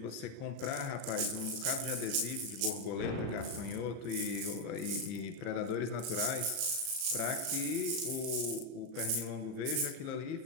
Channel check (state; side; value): late; left; 36 ms